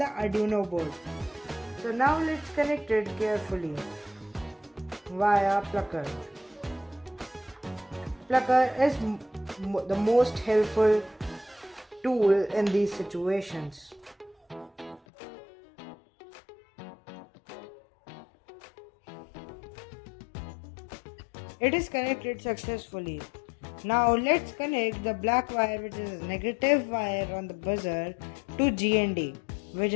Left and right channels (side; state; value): right; drops out; at 15.0 s